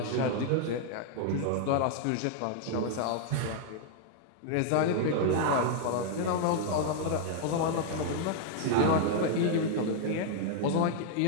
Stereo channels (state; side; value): different; both; correlation 0.00